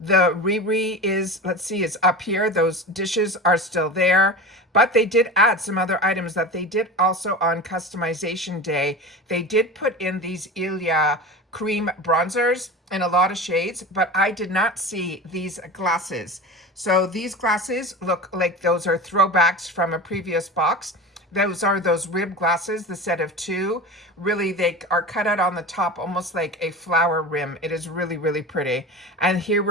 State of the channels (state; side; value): normal; both; correlation 0.30